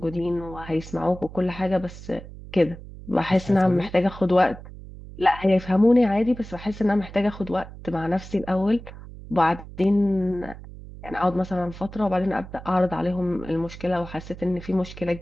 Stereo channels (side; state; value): right; noise; hum, 15 dB below the sound